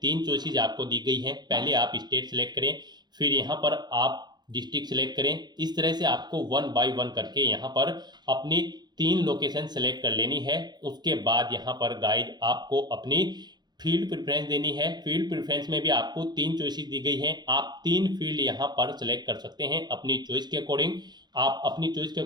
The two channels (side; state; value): left; late; 0.21 ms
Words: चॉइसेस आपको दी गई हैं। पहले आप स्टेट सेलेक्ट करें, फिर यहाँ पर आप डिस्ट्रिक्ट सेलेक्ट करें। इस तरह से आपको 1 बाय 1 करके यहाँ पर अपनी 3 लोकेशन सेलेक्ट कर लेनी है। उसके बाद यहाँ पर गाइड आपको अपनी फील्ड प्रेफरेंस देनी है। फील्ड प्रेफरेंस में भी आपको 3 चॉइसेस दी गई हैं। आप 3 फील्ड यहाँ पर सेलेक्ट कर सकते हैं अपनी चॉइस के अकॉर्डिंग। आप अपनी चॉइस के